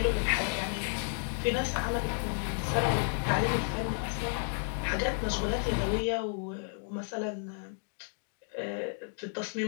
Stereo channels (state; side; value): silent; right; 56 dB below the other